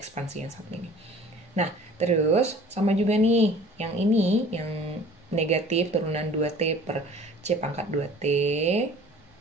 yang satu ini. Nah, terus sama juga nih, yang ini yang negatif turunan 2T per C pangkat 2T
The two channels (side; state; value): both; normal; correlation 0.48